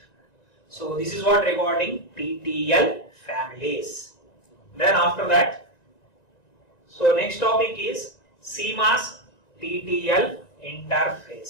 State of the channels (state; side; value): late; right; 1.9 ms